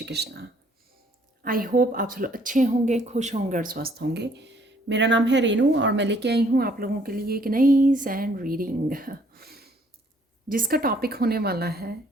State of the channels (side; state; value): both; normal; correlation 0.63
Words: कृष्णा। आई होप आप सब लोग अच्छे होंगे, खुश होंगे और स्वस्थ होंगे। मेरा नाम है रेनू और मैं लेके आई हूँ आप लोगों के लिए एक नई सैंड रीडिंग, जिसका टॉपिक होने वाला है